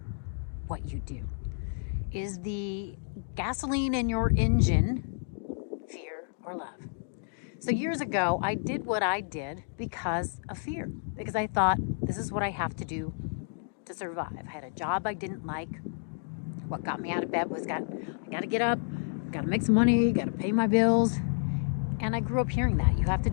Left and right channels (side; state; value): right; silent; digital silence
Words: what you do? Is the gasoline in your engine fear or love? So years ago, I did what I did because of fear, because I thought this is what I have to do to survive. I had a job I didn't like. What got me out of bed was I got to get up, got to make some money, got to pay my bills. And I grew up hearing that. You have to